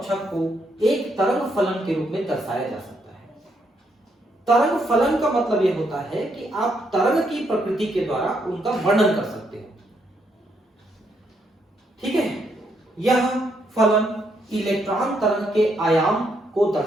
को एक तरंग फलन के रूप में दर्शाया जा सकता है। तरंग फलन का मतलब यह होता है कि आप तरंग की प्रकृति के द्वारा उनका वर्णन कर सकते हो। ठीक है, यह फलन इलेक्ट्रॉन तरंग के आयाम को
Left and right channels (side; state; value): both; normal; correlation 0.76